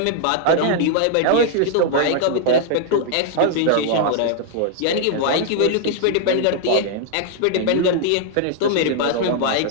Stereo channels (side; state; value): both; different; correlation -0.01